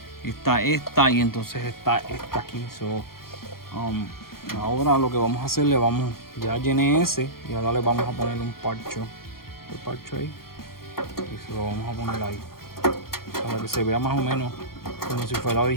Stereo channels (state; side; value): late; right; 0.93 ms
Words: y entonces está esta aquí. So ahora lo que vamos a hacer, ya llené ese, y ahora le vamos a poner un parcho. El parcho ahí, y se lo vamos a poner ahí para que se vea más o menos como si fuera